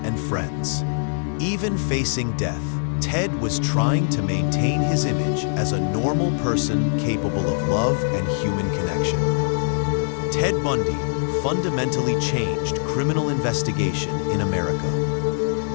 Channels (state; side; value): silent; right; digital silence